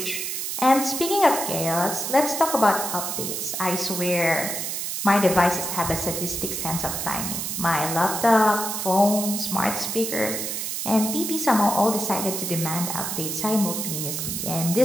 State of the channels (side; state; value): right; noise; hiss, 3 dB below the sound